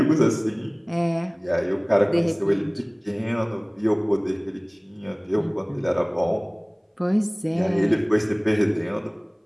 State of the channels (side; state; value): both; identical; correlation 1.00